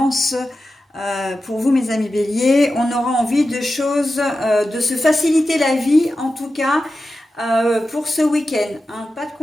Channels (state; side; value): normal; both; correlation 0.92